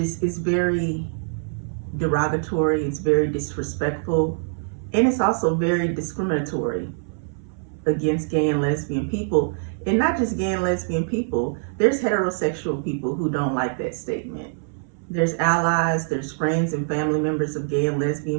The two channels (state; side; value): silent; left; 63 dB below the other